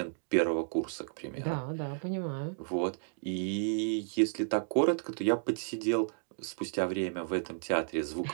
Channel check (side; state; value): left; silent; digital silence